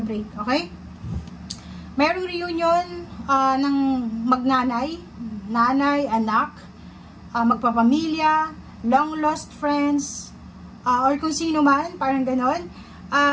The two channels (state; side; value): identical; both; correlation 1.00